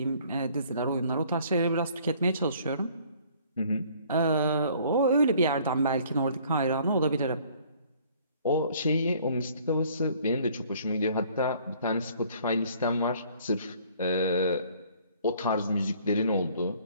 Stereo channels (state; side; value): inverted; both; correlation -0.57